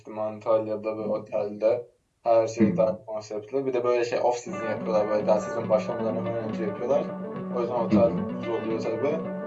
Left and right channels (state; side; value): identical; both; correlation 1.00